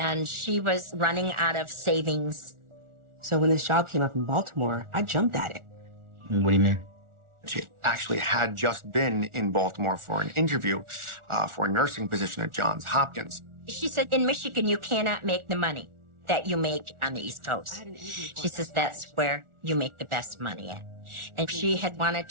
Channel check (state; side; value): late; left; 1.4 ms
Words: she was running out of savings. So when this job came up in Baltimore, I jumped at it. What do you mean? She actually had just been in Baltimore for an interview for a nursing position at Johns Hopkins. She said, in Michigan, you cannot make the money that you make on the East Coast. She says that's where you make the best money at. And she had wanted